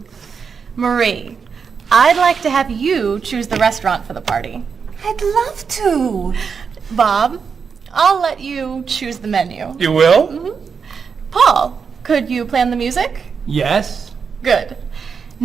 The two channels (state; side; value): quieter; left; 6.0 dB